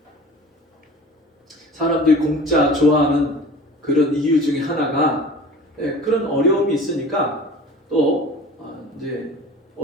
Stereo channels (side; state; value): both; normal; correlation 0.41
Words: 사람들이 공짜 좋아하는 그런 이유 중에 하나가 그런 어려움이 있으니까 또 이제